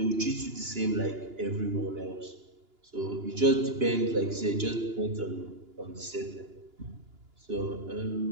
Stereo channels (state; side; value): late; left; 2.9 ms